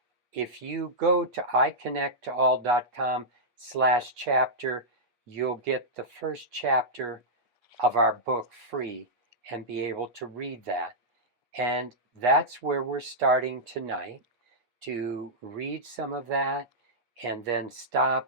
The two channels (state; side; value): late; left; 8.4 ms